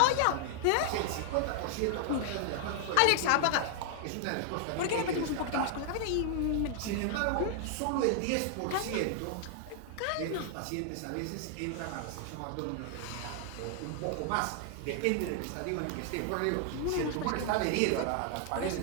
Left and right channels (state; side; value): different; both; correlation 0.00